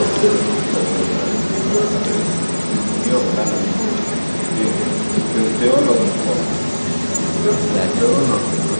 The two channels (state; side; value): inverted; both; correlation -1.00